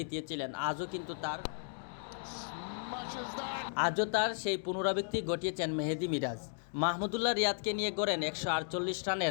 smashes that. আজও তার সেই পুনরাবৃত্তি ঘটিয়েছেন মেহেদী মিরাজ। মাহমুদুল্লাহ রিয়াদকে নিয়ে গড়েন 148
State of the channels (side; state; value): right; silent; digital silence